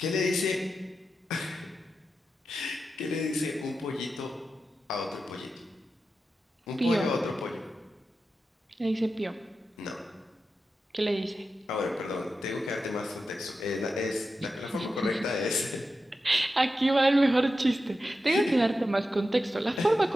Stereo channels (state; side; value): normal; both; correlation 0.90